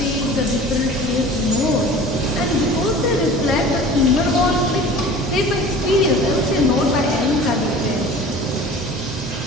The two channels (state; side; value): normal; both; correlation 0.41